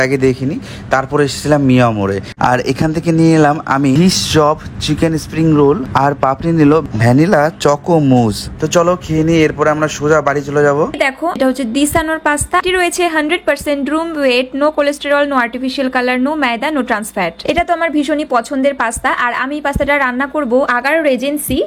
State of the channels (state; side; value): identical; both; correlation 1.00